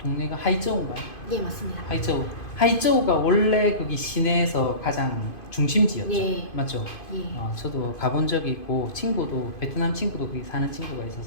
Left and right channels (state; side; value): late; right; 2.5 ms